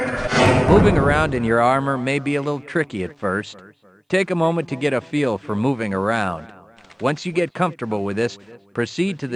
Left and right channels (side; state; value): both; identical; correlation 1.00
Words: Moving around in your armor may be a little tricky at first. Take a moment to get a feel for moving around. Once you get comfortable with this, proceed to